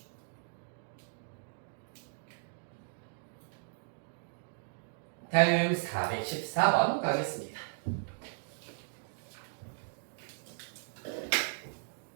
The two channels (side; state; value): left; silent; digital silence